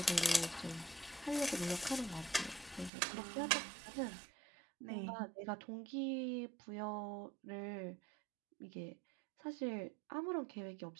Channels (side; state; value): left; drops out; at 2.9 s